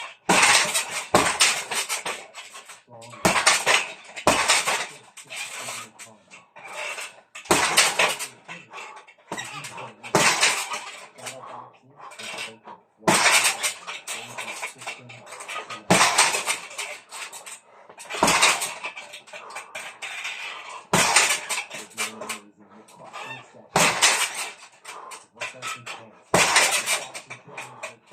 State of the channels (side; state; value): both; identical; correlation 1.00